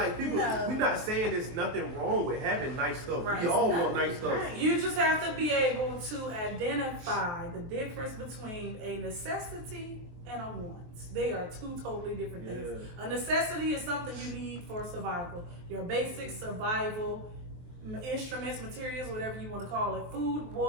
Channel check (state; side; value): late; left; 23 ms